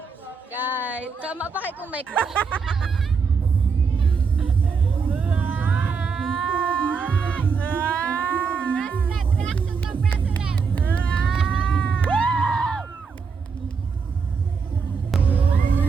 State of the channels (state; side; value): quieter; left; 5.4 dB